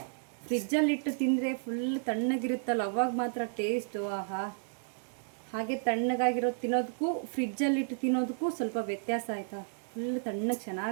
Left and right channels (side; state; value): left; silent; digital silence